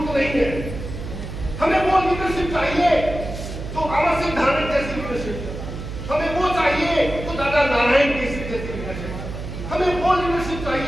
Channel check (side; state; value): right; noise; hum, 8 dB below the sound